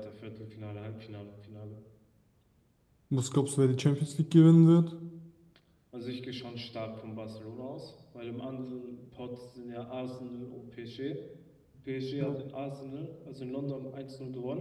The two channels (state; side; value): identical; both; correlation 1.00